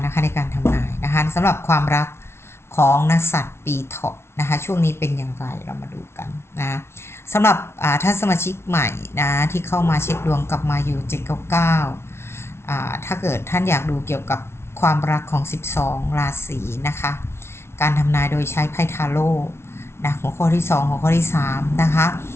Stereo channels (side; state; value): right; late; 0.12 ms